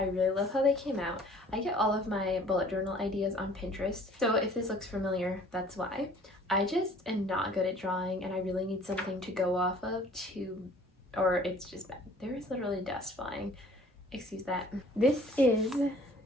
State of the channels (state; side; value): normal; both; correlation 0.53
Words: really love how they came out. I get all of my bullet journal ideas on Pinterest, so if this looks familiar, that's why. I just am not good at drawing and I really need something to go off of or it's just bad. There is literally dust flying. Excuse that. This is